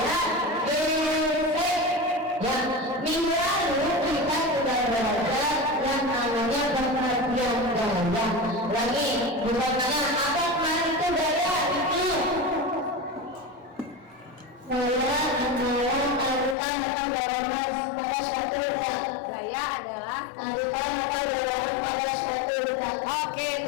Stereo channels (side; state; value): right; drops out; at 16.6 s